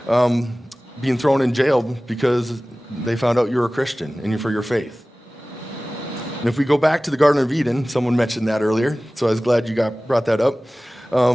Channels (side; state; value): both; normal; correlation 0.98